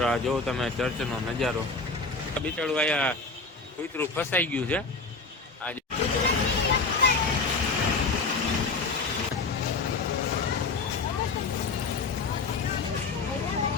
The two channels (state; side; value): quieter; right; 4.1 dB